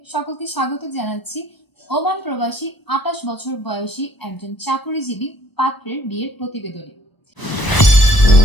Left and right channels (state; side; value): late; right; 1.0 ms